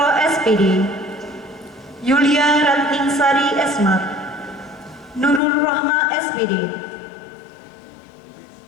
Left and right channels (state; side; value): drops out; right; at 5.4 s